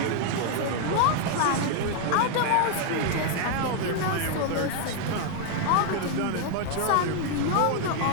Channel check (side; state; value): both; different; correlation 0.00